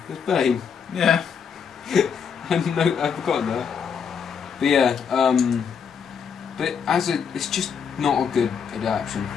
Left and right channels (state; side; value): quieter; right; 6.8 dB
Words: There's Bane. Yeah. I've forgotten that. But yeah, but it's just not a good adaptation.